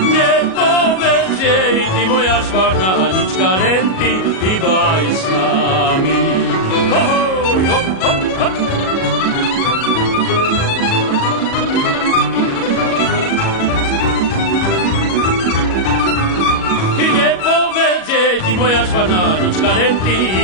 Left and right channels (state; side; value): late; right; 37 ms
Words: Nepovedz jej, ty moja švarná Anička, len ty hýbaj s nami. Ahoj, hop, hop, hop. Nepovedz jej, ty moja švarná Anička, len ty